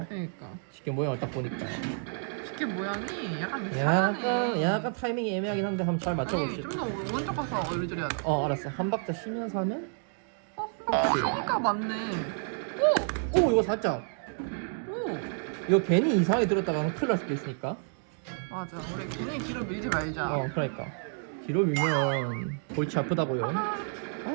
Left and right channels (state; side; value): silent; left; 56 dB below the other